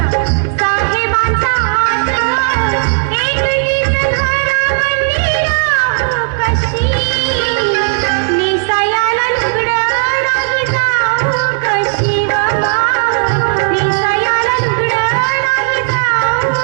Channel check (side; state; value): left; silent; digital silence